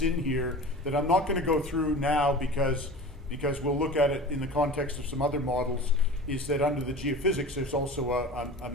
in here that I'm not going to go through now because we'll look at it in the context of some other models is that under the geophysics there's also a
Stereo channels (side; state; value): both; normal; correlation 0.36